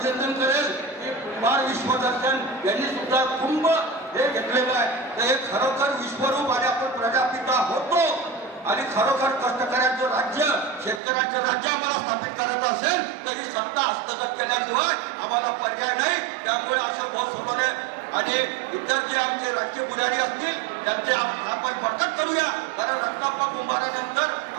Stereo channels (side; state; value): left; drops out; at 11.0 s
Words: करेल की कुंभार विश्वदर्शन यांनी सुद्धा कुंभ हे घेतलेलं आहे. तर हे खरोखर विश्वरूप आणि आपण प्रजापिता होतो. आणि खरोखर कष्टकऱ्यांचं राज्य शेतकऱ्यांचं राज्य आम्हाला स्थापित करायचं असेल तरी सत्ता हस्तगत केल्याशिवाय आम्हाला पर्याय नाही. त्यामुळे असं भाऊ सोनवणे आणि इतर जे आमचे राज्य पुजारी असतील त्यांचे आपण बरकत करूया. कारण रत्नाप्पा कुंभारानंतर